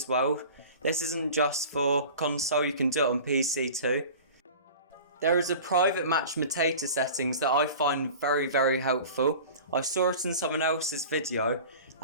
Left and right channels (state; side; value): inverted; both; correlation -0.39